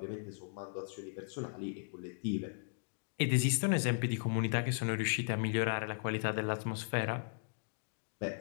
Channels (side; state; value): right; silent; digital silence